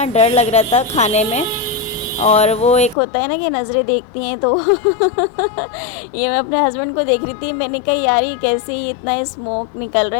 डर लग रहा था खाने में, और वो एक होता है ना कि नज़रें देखती हैं, तो ये मैं अपने हस्बैंड को देख रही थी। मैंने कहा यार ये कैसे ही इतना स्मोक निकल रहा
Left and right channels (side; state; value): right; drops out; at 3.0 s